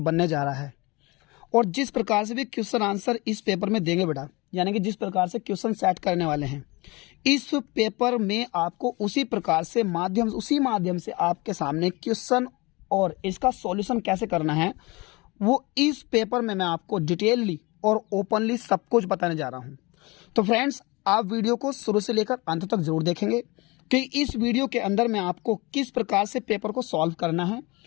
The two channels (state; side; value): quieter; right; 24.5 dB